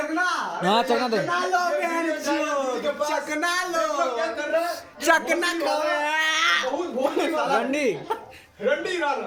हाँ चकना दे, चकना लो बहन चोद, चकना लो, चकना लो। रंडी रंडी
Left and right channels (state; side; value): identical; both; correlation 1.00